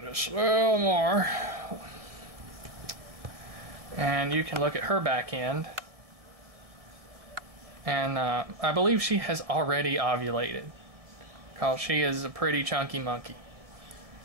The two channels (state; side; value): late; left; 1.7 ms